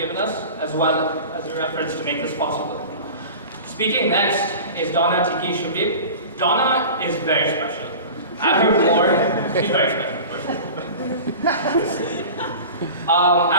us, as well as your efforts to make this possible. Speaking next is Donna Tiqui-Shebib. Donna is very special. At her core, she's very special.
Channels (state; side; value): inverted; both; correlation -0.36